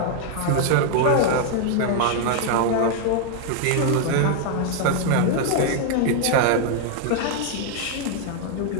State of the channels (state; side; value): different; both; correlation 0.00